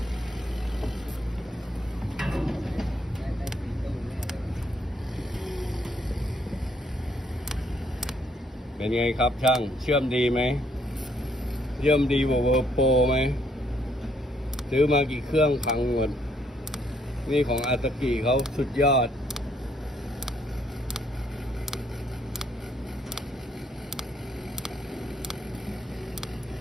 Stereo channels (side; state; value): both; normal; correlation 0.69